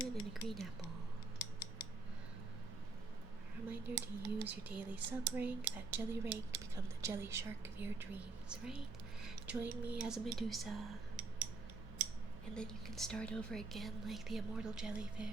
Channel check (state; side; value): quieter; left; 3.7 dB